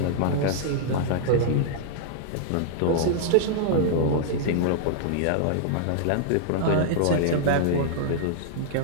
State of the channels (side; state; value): both; different; correlation -0.01